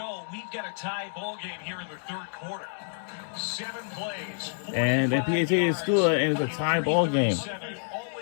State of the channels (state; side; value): silent; right; digital silence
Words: we've got a tie ball game here in the third quarter. 7 plays. And the PAT is good, and it's a tie ball game.